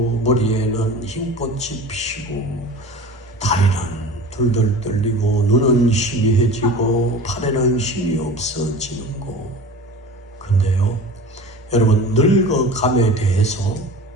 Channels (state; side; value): normal; both; correlation 0.37